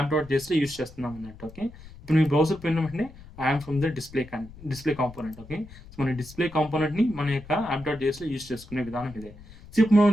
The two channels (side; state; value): left; noise; rumble, 18 dB below the sound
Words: యూజ్ చేస్తున్నాం అన్నట్టు. ఓకే. ఇప్పుడు మీ బ్రౌజర్ పోయిన వెంటనే I'm from the display component. Okay. So మన డిస్‌ప్లే కాంపోనెంట్‌ని మన యొక్క app.jsలో యూజ్ చేసుకునే విధానం ఇదే. సో ఇప్పుడు మనం